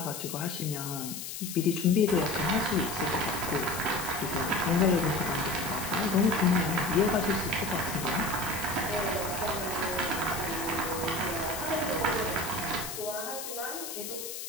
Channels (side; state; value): left; noise; hiss, 7 dB below the sound